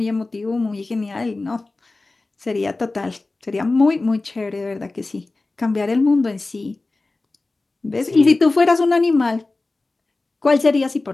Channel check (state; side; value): quieter; right; 3.3 dB